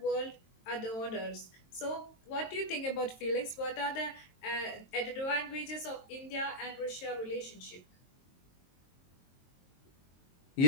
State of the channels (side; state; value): right; late; 22 ms